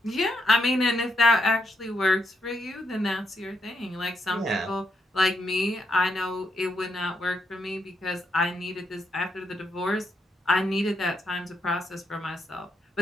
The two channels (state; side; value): normal; both; correlation 0.79